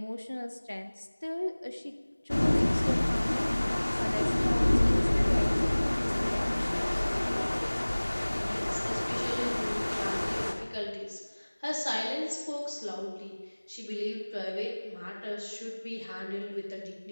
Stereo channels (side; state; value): both; inverted; correlation -1.00